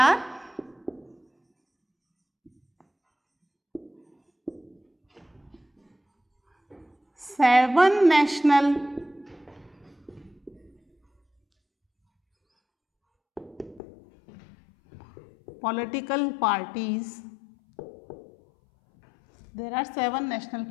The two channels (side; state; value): right; drops out; at 13.8 s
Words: 7 national political parties. There are 7 national